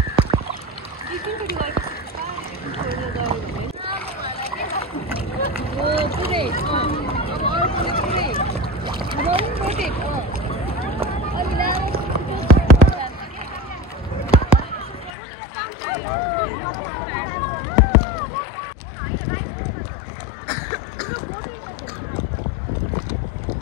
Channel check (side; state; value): right; drops out; at 15.1 s